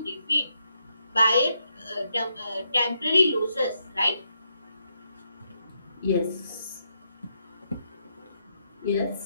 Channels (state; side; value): inverted; both; correlation -0.80